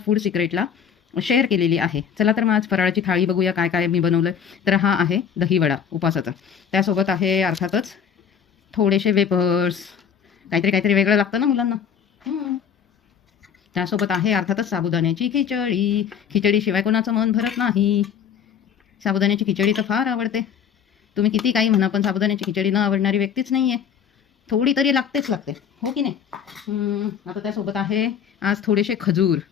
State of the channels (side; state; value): right; quieter; 7.8 dB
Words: फूड सिक्रेटला शेअर केलेली आहे. चला तर मग आज फराळाची थाळी बघूया काय काय मी बनवलं. तर हा आहे दहीवडा उपासाचा. त्यासोबत आहे अर्थातच थोडेसे वेपर्स, काहीतरी काहीतरी वेगळं लागतं ना मुलांना. त्यासोबत आहे अर्थातच साबुदाण्याची खिचडी. खिचडीशिवाय कोणाचं मन भरत नाही. साबुदाण्याची खिचडी तर फार आवडते. तुम्ही किती काही म्हणा पण साबुदाण्याची खिचडी न आवडणारी व्यक्तीच नाही आहे. थोडी तरी लागतेच लागते, हो की नाही. आता त्यासोबत आहे आज थोडेसे खजूर.